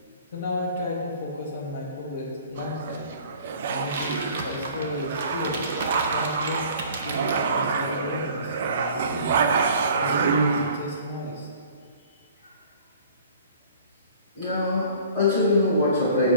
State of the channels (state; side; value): inverted; both; correlation -0.49